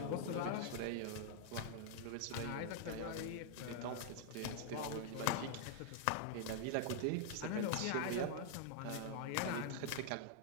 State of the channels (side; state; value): both; different; correlation -0.01